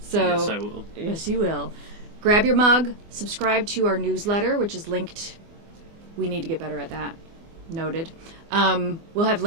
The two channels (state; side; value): late; left; 24 ms